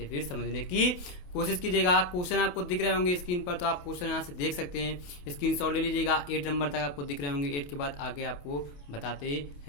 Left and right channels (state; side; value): late; right; 28 ms